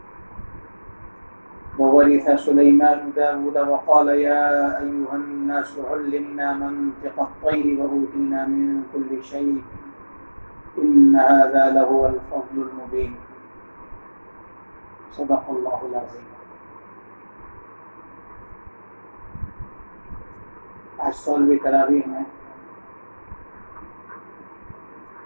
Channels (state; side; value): inverted; both; correlation -1.00